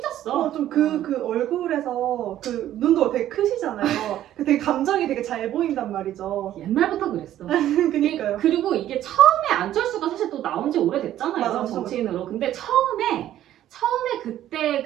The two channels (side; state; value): left; quieter; 12.4 dB